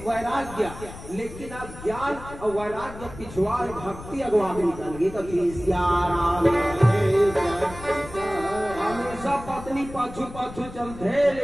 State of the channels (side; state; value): left; noise; rumble, 14 dB below the sound